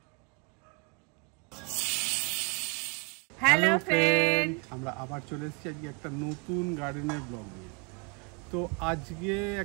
হ্যালো ফ্রেন্ড, আমরা আবার চলে এসেছি আজকে একটা নতুন গার্ডেনের ব্লগ নিয়ে। তো আজকে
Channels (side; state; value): left; quieter; 33.8 dB